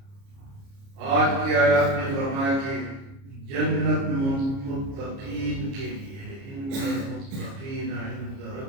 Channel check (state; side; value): late; left; 29 ms